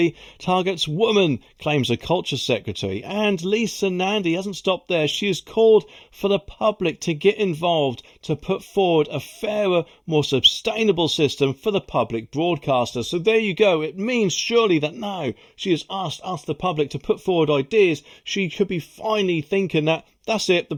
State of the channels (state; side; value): identical; both; correlation 1.00